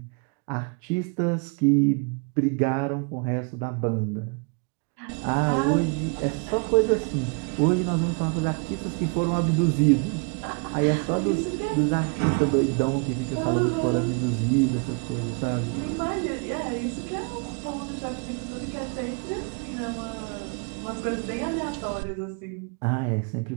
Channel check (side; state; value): left; quieter; 35.6 dB